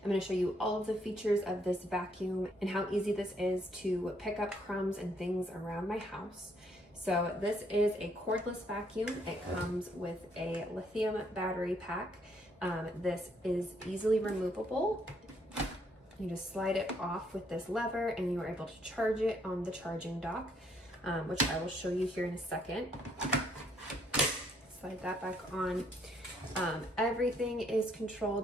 I'm going to show you all of the features of this vacuum and how easy this is to pick up crumbs and things around my house. So this is a cordless vacuum. It comes with a lithium battery pack. This is easily removable. You just slide it off with this lever and you are able to charge it on the charging dock, which I will show you here in a second. Slide that back on. Everything is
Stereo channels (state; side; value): normal; both; correlation 0.70